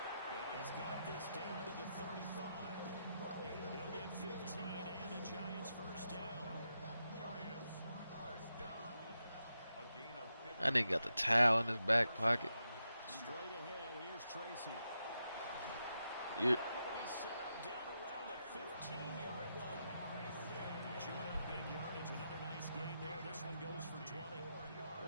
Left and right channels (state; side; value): inverted; both; correlation -0.85